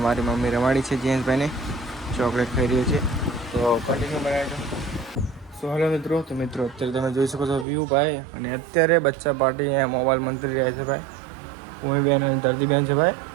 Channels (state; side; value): drops out; left; at 7.7 s